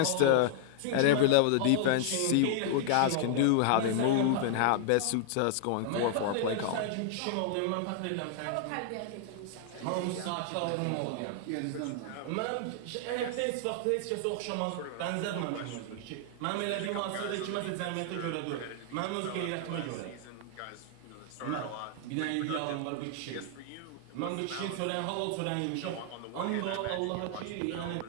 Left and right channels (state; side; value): different; both; correlation 0.00